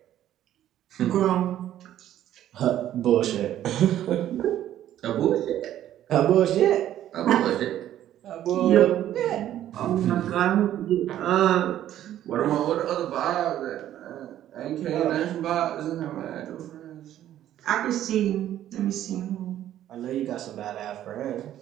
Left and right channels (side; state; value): left; quieter; 12.0 dB